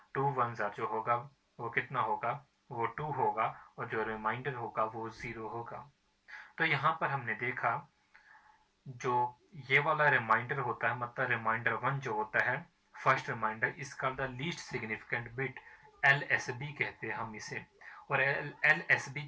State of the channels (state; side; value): identical; both; correlation 1.00